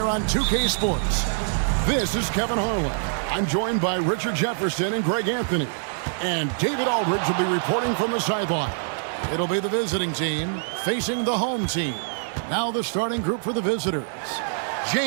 on 2K Sports. This is Kevin Harlan. I'm joined by Richard Jefferson and Greg Anthony. And David Aldridge will be reporting from the sideline. It'll be the visiting team facing the home team. Now the starting group for the visitors.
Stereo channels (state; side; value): silent; left; digital silence